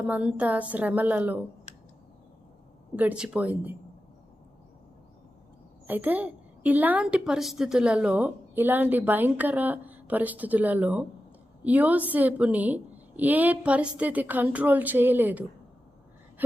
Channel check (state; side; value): normal; both; correlation 0.92